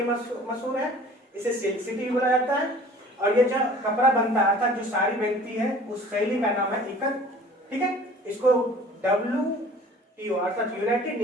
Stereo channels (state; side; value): normal; both; correlation 0.48